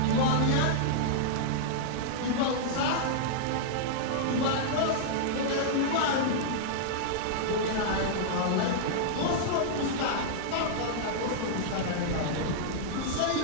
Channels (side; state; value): both; different; correlation -0.02